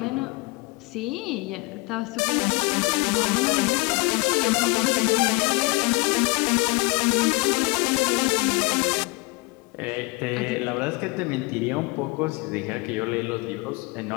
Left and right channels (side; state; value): right; quieter; 26.0 dB